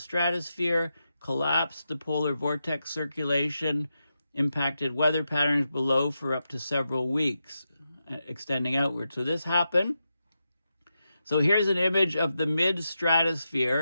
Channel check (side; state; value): both; inverted; correlation -0.88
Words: collapsed the polar vortex circulation, impacted weather patterns below for up to several weeks, extending outward. So this happened. So here's an image of the